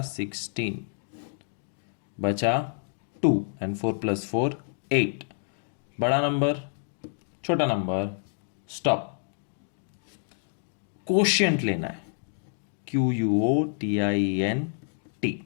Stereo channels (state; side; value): silent; right; digital silence